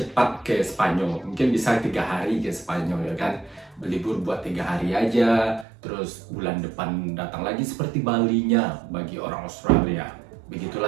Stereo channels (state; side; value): drops out; left; at 5.7 s